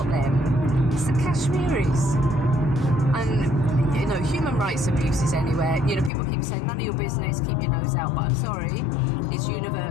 them? It's the Kashmiris. And human rights abuses anywhere. People keep saying none of your business, keep your nose out, but I'm sorry, it's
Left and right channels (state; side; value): drops out; right; at 6.1 s